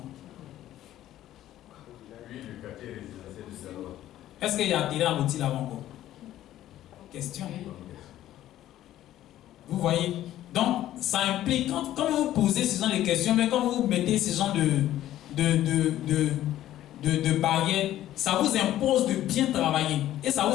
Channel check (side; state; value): right; quieter; 13.2 dB